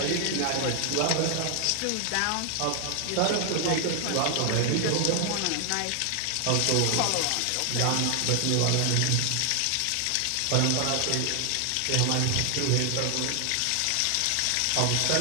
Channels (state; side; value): different; both; correlation 0.00